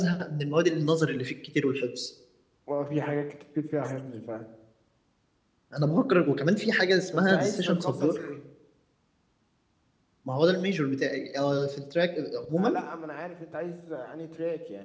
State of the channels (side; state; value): both; identical; correlation 1.00